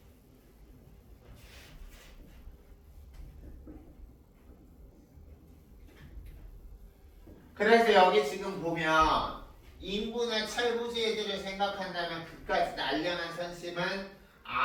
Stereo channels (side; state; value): both; identical; correlation 1.00